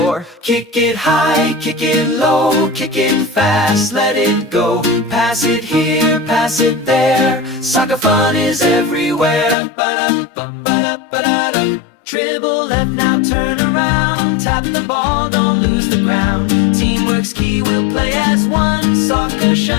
Kick it high, kick it low, kick it fast, let it go. Pass it here, pass it there. Soccer fun is everywhere. Ba-dum-bum, ba-da-ba-da-dum. Dribble left, now turn around. Tap the ball, don't lose the ground. Teamwork's key, we'll play as one. Soccer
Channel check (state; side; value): drops out; right; at 9.6 s